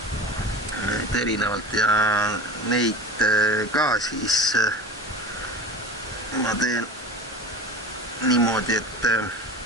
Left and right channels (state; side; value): normal; both; correlation 0.34